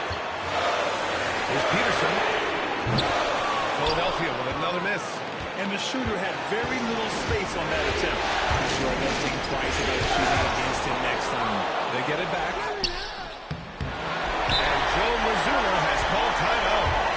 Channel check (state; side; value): identical; both; correlation 1.00